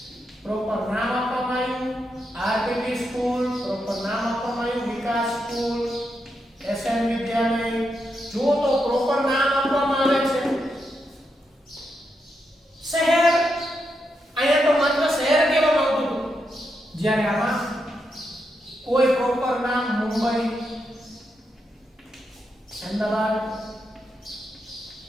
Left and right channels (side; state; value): both; normal; correlation 0.83